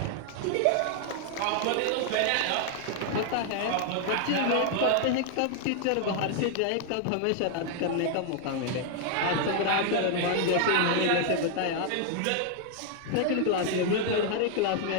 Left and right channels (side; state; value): both; different; correlation 0.00